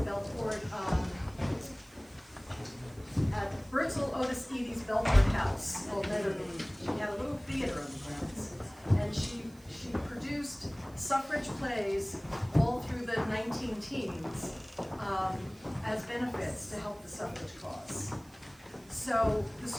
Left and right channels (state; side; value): noise; right; hiss, 26 dB below the sound